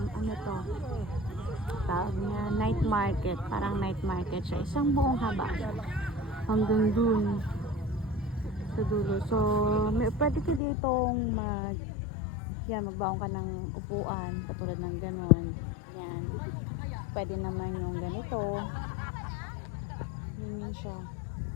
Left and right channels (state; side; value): drops out; right; at 10.6 s